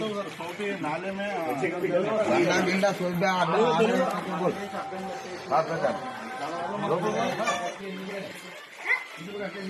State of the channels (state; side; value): identical; both; correlation 1.00